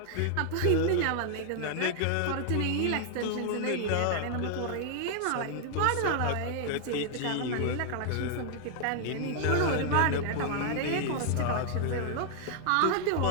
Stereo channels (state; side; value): different; both; correlation 0.00